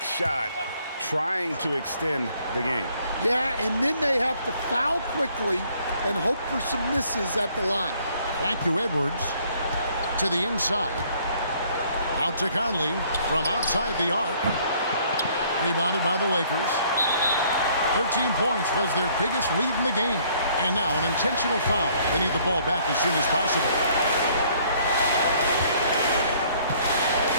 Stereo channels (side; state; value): both; inverted; correlation -0.62